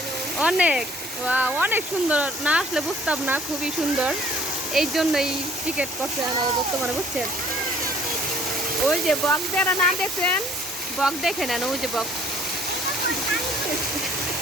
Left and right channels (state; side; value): normal; both; correlation 0.57